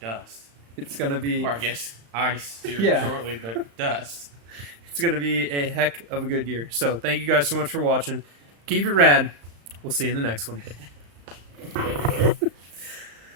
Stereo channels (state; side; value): late; left; 35 ms